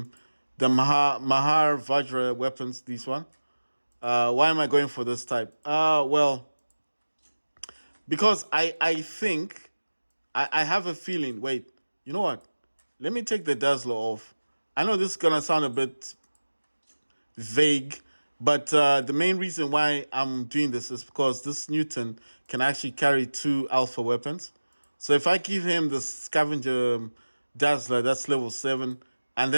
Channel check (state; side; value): inverted; both; correlation -1.00